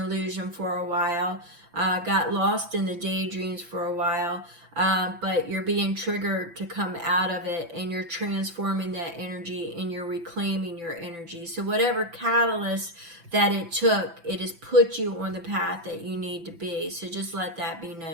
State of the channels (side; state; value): left; late; 5.9 ms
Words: for a while, got lost in the daydreams for a while, but you're being triggered to come out of it, and you're transforming that energy and you're reclaiming your energy. So whatever catalyst that it took, it has put you on the path that you need to be. So just let that be